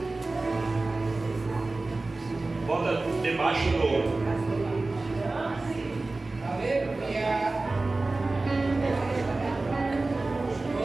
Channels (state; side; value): quieter; left; 3.3 dB